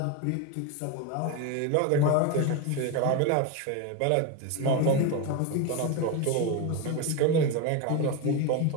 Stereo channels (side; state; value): both; different; correlation 0.03